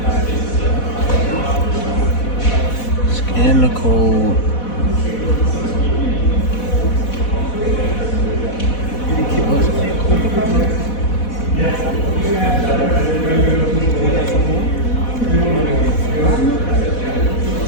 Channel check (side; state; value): right; late; 4.1 ms